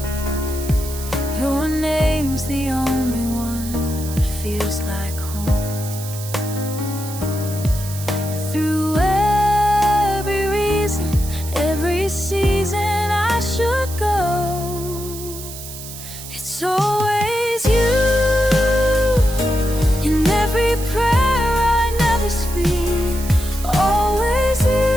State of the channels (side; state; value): right; noise; hiss, 12 dB below the sound